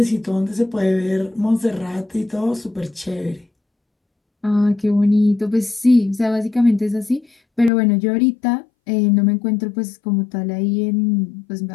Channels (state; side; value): drops out; right; at 7.7 s